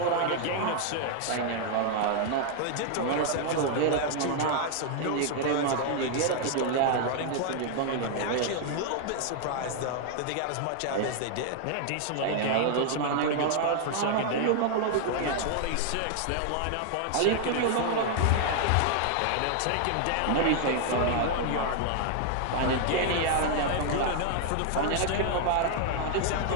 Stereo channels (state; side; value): different; both; correlation 0.00